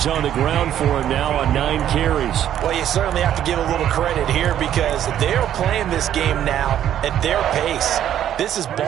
on the ground for him now on 9 carries. Well, you certainly have to give a little credit here because they're playing this game now at their pace. This is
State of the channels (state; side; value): quieter; left; 10.8 dB